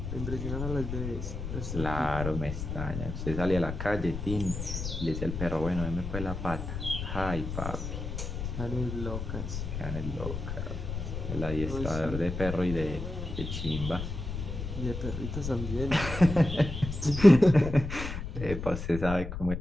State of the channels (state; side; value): noise; left; rumble, 5 dB below the sound